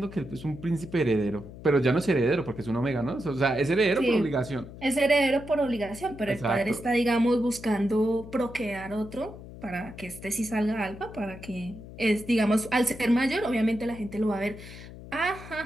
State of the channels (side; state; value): left; noise; hum, 15 dB below the sound